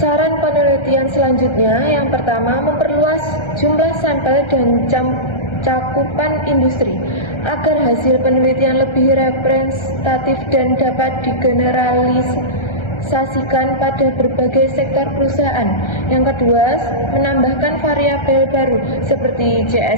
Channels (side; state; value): right; late; 1.3 ms